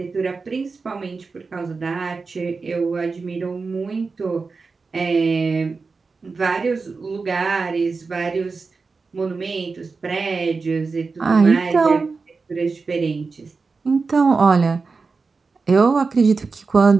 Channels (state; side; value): quieter; left; 4.4 dB